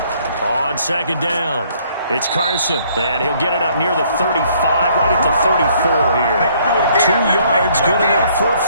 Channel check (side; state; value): both; inverted; correlation -0.63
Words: On second down, it's Carson, and he'll get it up near the 35, right at the 34 here. 2 yards, good enough for a